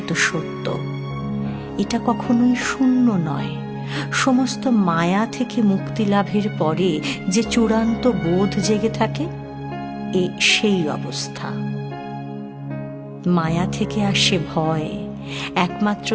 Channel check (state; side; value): identical; both; correlation 1.00